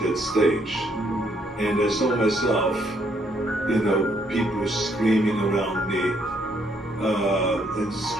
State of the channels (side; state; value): both; normal; correlation 0.70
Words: that stage. And I saw myself, people screaming around me, and